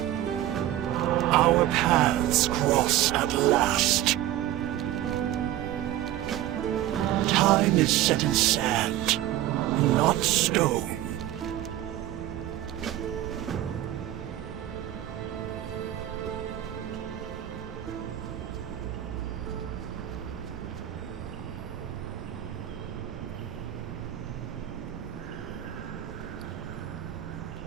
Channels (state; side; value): quieter; left; 13.4 dB